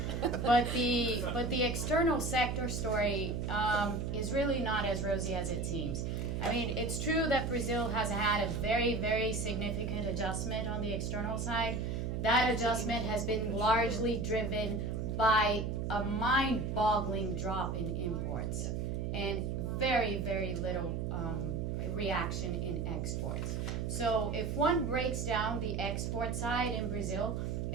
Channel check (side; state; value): right; noise; hum, 2 dB below the sound